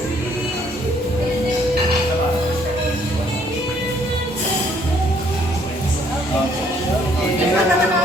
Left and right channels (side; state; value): both; normal; correlation 0.65